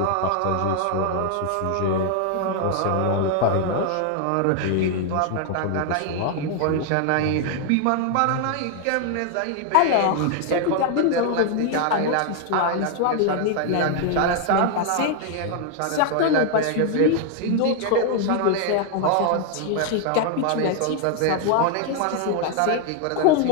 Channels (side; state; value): both; different; correlation 0.00